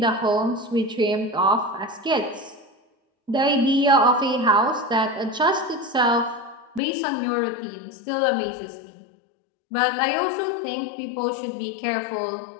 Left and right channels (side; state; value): right; drops out; at 6.8 s